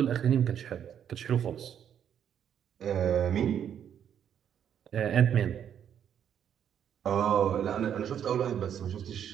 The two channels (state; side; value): quieter; left; 9.0 dB